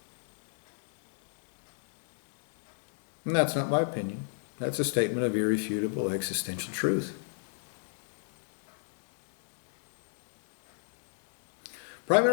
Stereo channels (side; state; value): right; silent; digital silence